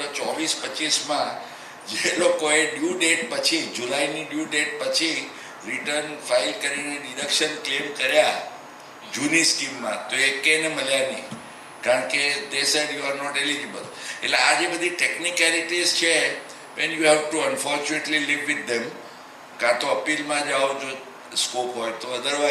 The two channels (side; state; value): both; identical; correlation 1.00